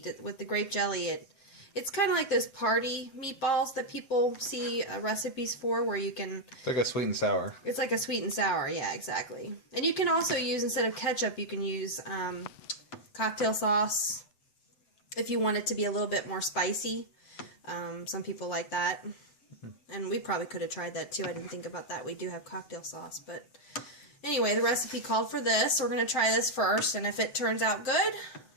With the grape jelly, it's kind of like those party meatballs that people see recipes for, where you can... It's like a sweet and sour. It's like a sweet and sour, yeah, exactly. And you can also use, instead of ketchup, you can use cocktail sauce if you want it to be a little bit more spicy. Some people like that. And we probably could have tried that too. I didn't think about that. We do have cocktail sauce, but... Anyway, the recipe called for this. We're going to try this first, and if it turns out good,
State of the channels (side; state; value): right; late; 7.9 ms